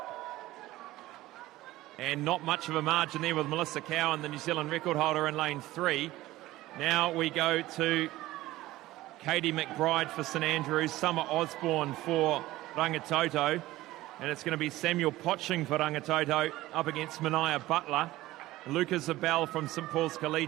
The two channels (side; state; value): left; quieter; 17.0 dB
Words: And not much of a margin there with Melissa Cowan, the New Zealand record holder, in lane 3. Now we go to Katie McBride for St Andrews, Summer Osborne for Rangitoto, and it's going to be Samuel Potching for Rangitoto up against Mania Butler. Lucas Abel from St Paul's